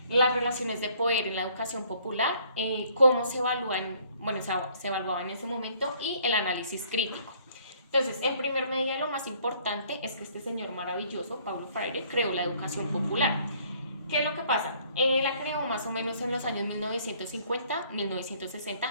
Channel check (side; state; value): both; inverted; correlation -0.61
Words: las relaciones de poder en la educación popular, cómo se evalúan, bueno, se evaluaba en ese momento y el análisis crítico. Entonces, en primer medida, lo más importante es que este señor maravilloso, Paulo Freire, creó la educación popular. ¿Qué es lo que pasa? La creó más o menos en los años